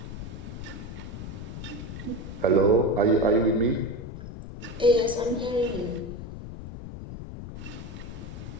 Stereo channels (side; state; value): left; noise; rumble, 9 dB below the sound